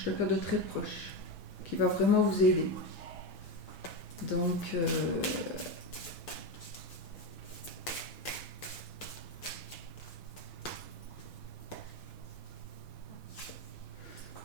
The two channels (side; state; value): right; late; 6.2 ms